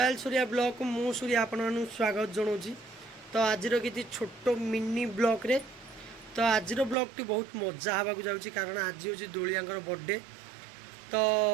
Surya blog को मु सूर्या आपण स्वागत जनाऊँ। तो आज किसी छोट मिनी ब्लॉग रे तो आज ब्लॉग टी बहुत मजा हवा जाऊँगी कारण आज हूँ दोलियांकर बर्थडे। तो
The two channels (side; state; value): left; drops out; at 7.0 s